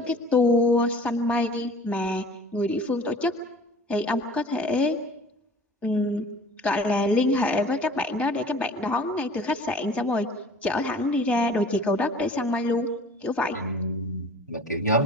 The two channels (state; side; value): normal; both; correlation 0.46